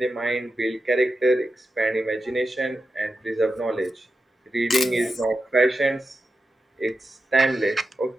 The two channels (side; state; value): both; normal; correlation 0.90